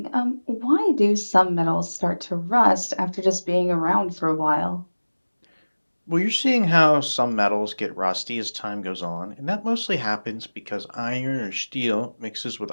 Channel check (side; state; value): both; inverted; correlation -1.00